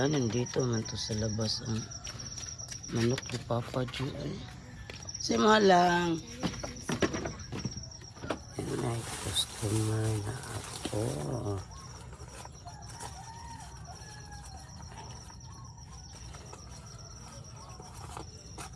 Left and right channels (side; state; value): both; identical; correlation 1.00